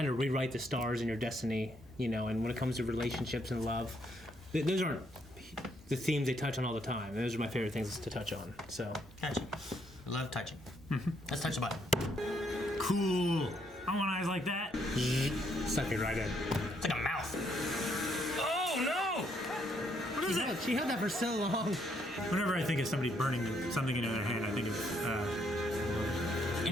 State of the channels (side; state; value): both; normal; correlation 0.72